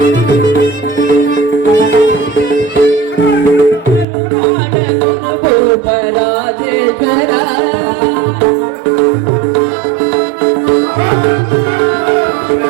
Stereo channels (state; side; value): drops out; left; at 4.0 s